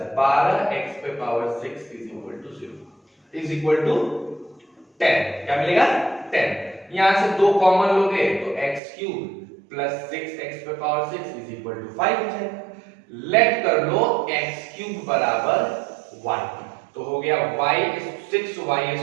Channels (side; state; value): left; drops out; at 8.8 s